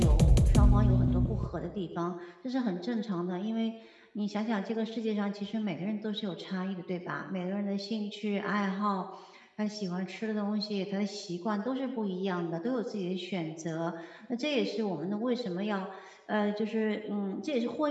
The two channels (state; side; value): identical; both; correlation 1.00